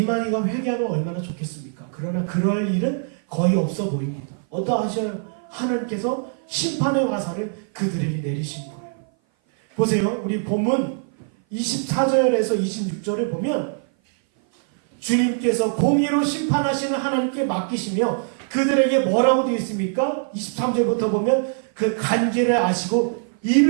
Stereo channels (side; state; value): left; silent; 57 dB below the other